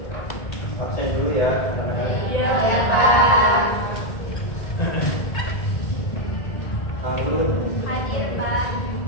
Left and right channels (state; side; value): late; right; 1.5 ms